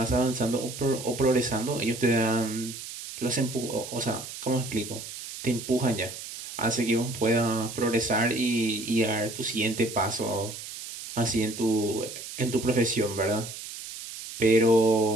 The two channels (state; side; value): noise; right; hiss, 11 dB below the sound